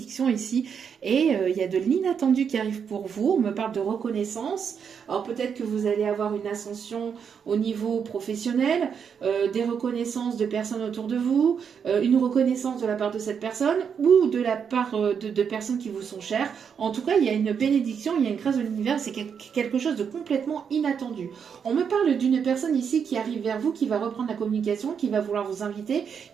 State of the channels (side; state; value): left; quieter; 7.0 dB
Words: ici. Et il y a de l'inattendu qui arrive pour vous. On me parle de reconnaissance. Alors peut-être que vous allez avoir une ascension au niveau professionnel, des reconnaissances de personnes autour de vous, une reconnaissance de la part de cette personne ou de la part de personnes qui vous sont chères. En tout cas, il y a une bénédiction, il y a une grâce de l'univers. C'est quelque chose de complètement inattendu. On me parle d'une personne ici qui arrive vers vous, qui va reprendre la communication, qui va vouloir vous inviter.